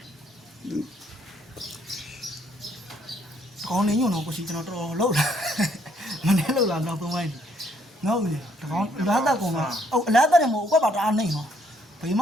ကောင်းနေညုံတော့ကိုရှိကျွန်တော်တော်လှုပ်လာမနေ့လှုပ်လာတော့ပုံပိုင်းနော်ဦးလေတကောင်းအလားတက်ကောင်ကအလားတက်တယ်မဟုတ်အကွက်ပါတအားနေနော်ဘယ်မ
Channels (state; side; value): normal; both; correlation 0.68